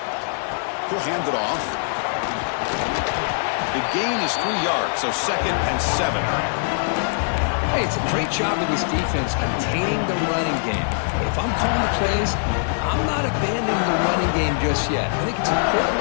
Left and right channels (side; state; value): right; silent; digital silence